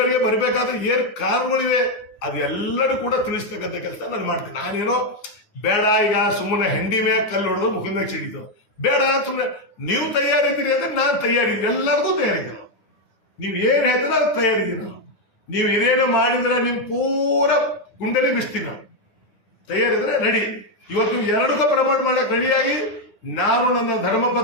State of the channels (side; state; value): right; late; 9.6 ms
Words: ಬರಬೇಕಾದ್ರೆ ಏನ್ ಕಾರಣಗಳಿವೆ, ಅದೆಲ್ಲರೂ ಕೂಡ ತಿಳಿಸ್ತಕ್ಕಂಥ ಕೆಲಸ ನಾನು ಮಾಡ್ತೀನಿ. ನಾನೇನೋ ಬೇಡ ಈಗ ಸುಮ್ಮನೆ ಹೆಂಡಿ ಮ್ಯಾಗ ಕಲ್ಲು ಹೊಡೆದು ಮುಖದ ಮ್ಯಾಗ ಸಿಡಿತು ಬೇಡ, ಸುಮ್ಮನೆ ನೀವು ತಯಾರಿದ್ದೀರಿ ಅಂದ್ರೆ ನಾನು ತಯಾರಿದ್ದೀನಿ, ಎಲ್ಲರಿಗೂ ತಯಾರಿದ್ದೀನಿ. ನೀವು ಏನ್ ಹೇಳ್ತೀರ ಅದು ತಯಾರಿದ್ದೀನಿ. ನೀವು ಏನೇನು ಮಾಡಿದ್ರೆ ನಿಮ್ ಪೂರ ಗುಂಡಲಿ ಬಿಸ್ತೀನಿ. ನಾವು ತಯಾರಿದ್ರೆ ರೆಡಿ. ಇವತ್ತು ಎರಡಕ್ಕೂ ಪ್ರಮಾಣ ಮಾಡಕ್ ರೆಡಿಯಾಗಿ ನಾನು ನನ್ನ